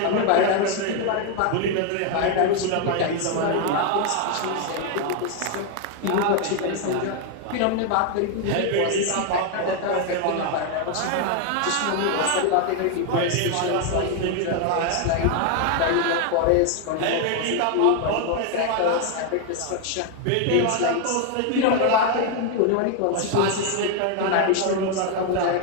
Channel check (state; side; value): different; both; correlation 0.01